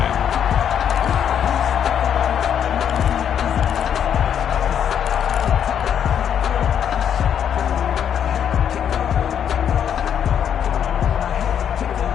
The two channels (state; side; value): quieter; right; 8.8 dB